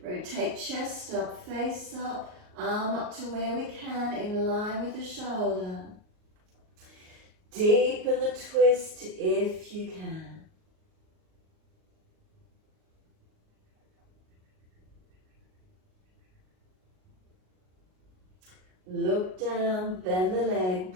Rotate chest up, face up, arm up to where we can, in line with the shoulder. Deepen the twist if you can. Look down, bend the leg,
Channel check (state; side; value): late; left; 38 ms